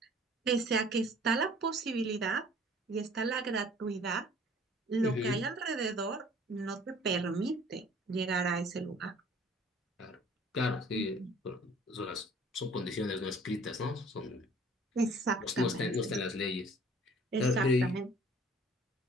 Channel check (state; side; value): normal; both; correlation 0.52